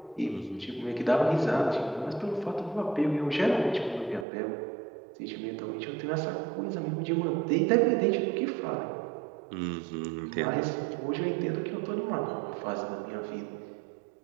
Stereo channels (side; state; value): left; drops out; at 4.2 s